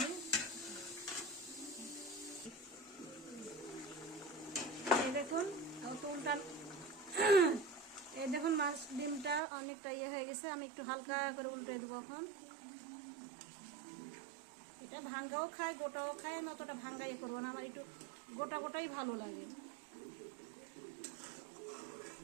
এই দেখুন উল্টা, এই দেখুন মাছ ডিমটা অনেকটা ইয়ে হয়ে গেছে। আমি একটু হালকা করে উল্টে দেবো এখন। এটা ভাঙ্গাও খায়, গোটাও খায়, আমি অতটা ভাঙ্গা ইয়ে করবো না। আমার একটু গোটা গোটাই ভালো লাগে।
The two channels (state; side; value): drops out; left; at 9.4 s